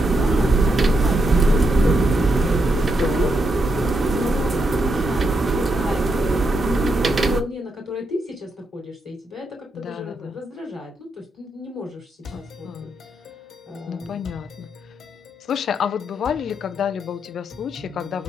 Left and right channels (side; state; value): both; normal; correlation 0.81